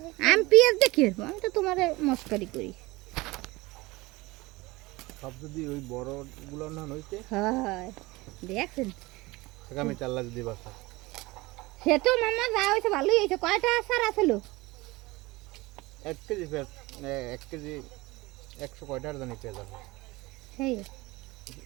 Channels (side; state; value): left; quieter; 21.7 dB